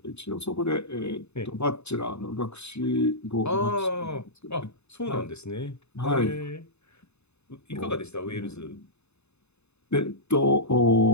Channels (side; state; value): right; late; 0.81 ms